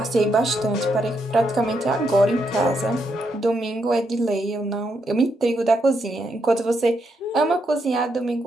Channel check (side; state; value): both; normal; correlation 0.79